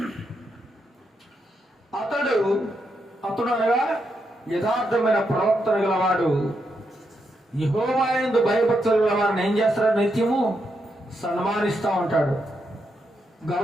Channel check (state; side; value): normal; both; correlation 0.82